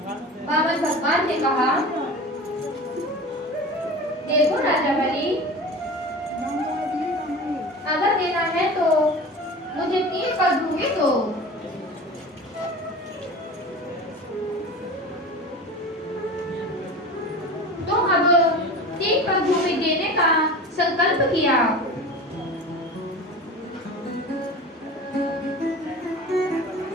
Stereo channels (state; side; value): normal; both; correlation 0.34